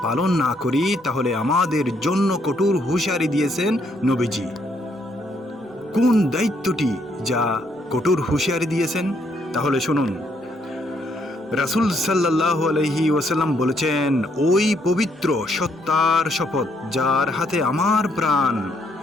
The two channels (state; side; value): normal; both; correlation 0.72